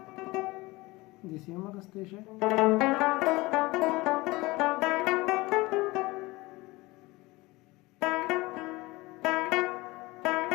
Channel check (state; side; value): quieter; right; 21.7 dB